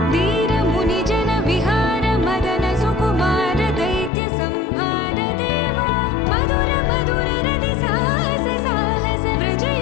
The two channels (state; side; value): drops out; right; at 4.1 s